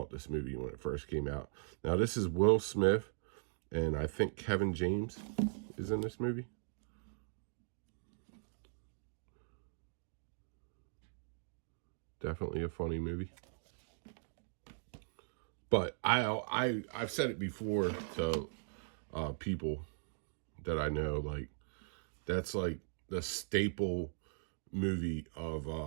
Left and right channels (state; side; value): silent; left; digital silence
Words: this movie when it first came out. Now this is Will Smith, and I think Kevin James is in this movie. Definitely a funny movie. But I've said it before to people that I know, like, that's like the staple movie of